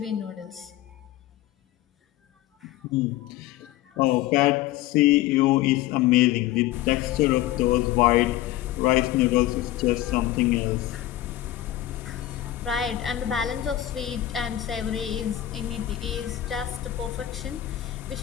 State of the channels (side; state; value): right; quieter; 14.2 dB